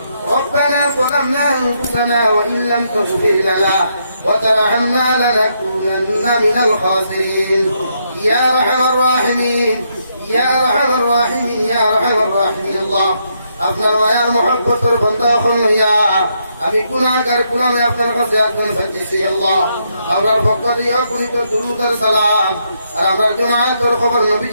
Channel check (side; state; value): both; inverted; correlation -0.77